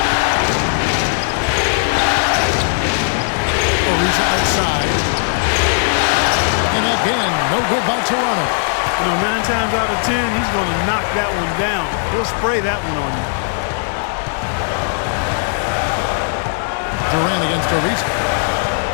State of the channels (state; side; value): silent; right; digital silence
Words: Ariza outside. And again, no good by Toronto. You know, 9 times out of 10, he's going to knock that one down. He'll spray that one on you. Durant against Ariza.